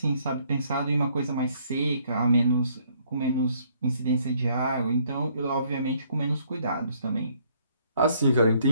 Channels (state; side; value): inverted; both; correlation -0.66